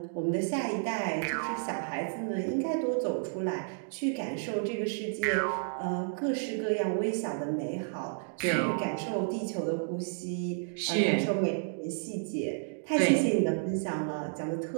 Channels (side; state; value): left; silent; digital silence